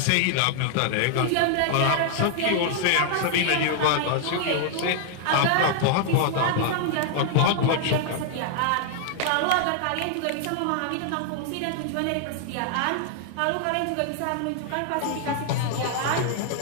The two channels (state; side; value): different; both; correlation 0.00